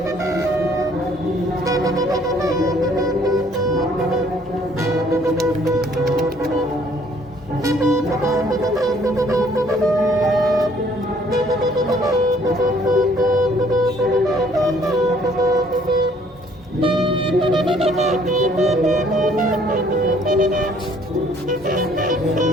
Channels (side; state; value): both; normal; correlation 0.61